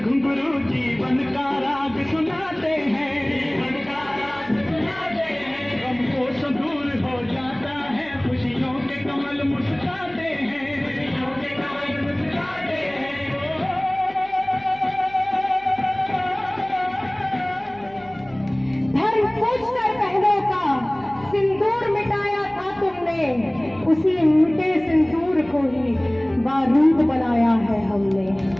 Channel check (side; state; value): left; noise; hum, 24 dB below the sound